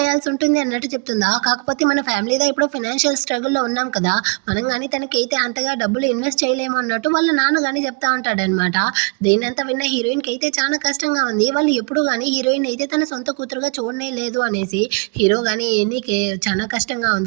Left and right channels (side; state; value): left; quieter; 35.5 dB